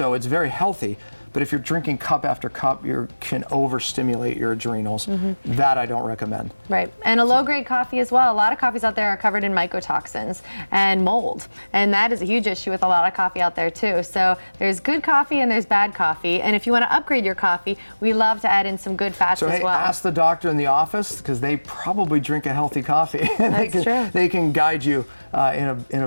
it's very healthy. But if you're drinking cup after cup, you can overstimulate your adrenals. That I don't recommend. Right, and a low-grade coffee as well. A lot of coffees out there are covered in mycotoxins and mold, and that is a huge issue with a lot of coffee out there too. So there's good coffee and there's bad coffee, and if you want to upgrade your coffee, we love to add in some good fats as well. Ask the doctor in the office, because they probably drink a healthy coffee, and they can guide you in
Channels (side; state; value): both; inverted; correlation -1.00